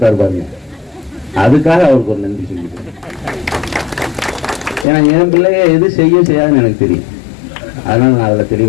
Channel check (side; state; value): right; drops out; at 4.9 s